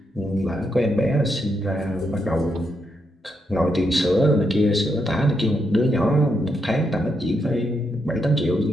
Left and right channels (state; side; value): normal; both; correlation 0.80